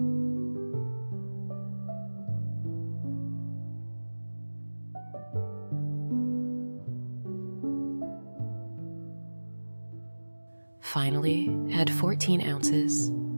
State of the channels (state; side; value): inverted; both; correlation -1.00